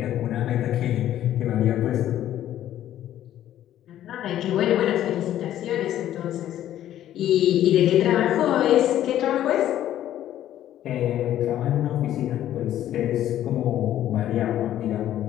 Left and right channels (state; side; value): quieter; right; 12.1 dB